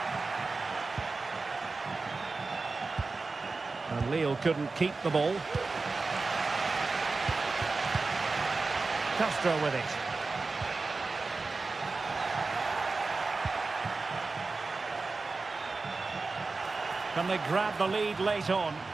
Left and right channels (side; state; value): left; quieter; 3.9 dB